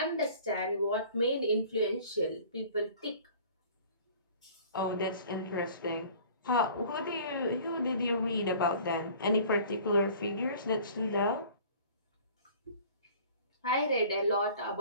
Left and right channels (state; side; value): inverted; both; correlation -0.48